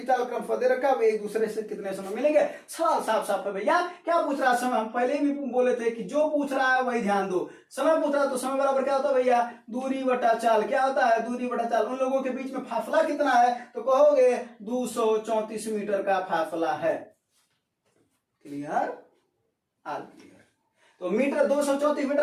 चाल क्रम दे रखा, वे एक दूसरे से कितने समय मिलेंगे? सवाल साफ है भैया। क्या पूछ रहा है? समय। हम पहले भी बोले थे कि जो पूछ रहा है वही ध्यान दो। समय पूछ रहा है तो समय बराबर क्या होता है भैया? दूरी बटा चाल। क्या होता है? दूरी बटा चाल। उन लोगों के बीच में फासला कितना है? तो कहोगे 234 मीटर का फासला है। क्लियर? आल क्लियर। तो मीटर 234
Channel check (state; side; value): identical; both; correlation 1.00